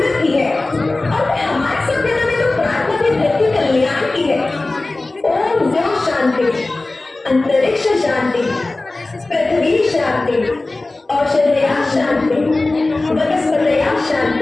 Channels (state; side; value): quieter; right; 3.1 dB